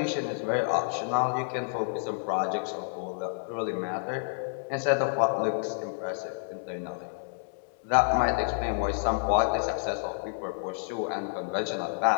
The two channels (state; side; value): silent; right; 58 dB below the other